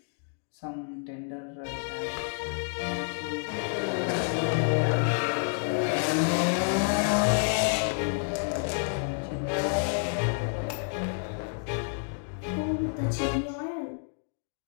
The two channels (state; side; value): silent; right; digital silence